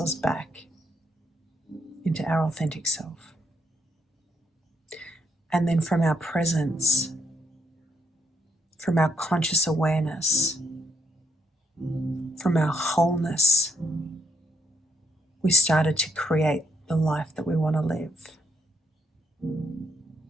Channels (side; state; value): both; normal; correlation 0.78